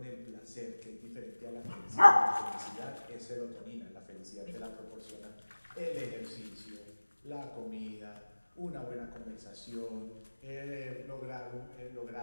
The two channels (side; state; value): both; inverted; correlation -1.00